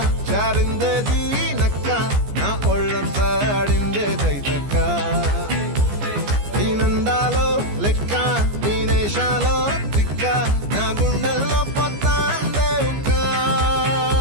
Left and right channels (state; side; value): late; left; 14 ms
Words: చారిందది నక్క నా ఒళ్ళంతా ఆడిందే దైతక్క దీనందాలో లెక్క దీనేశాలో దిక్క నా గుండెల్లో పొత్తా అందే ఉక్క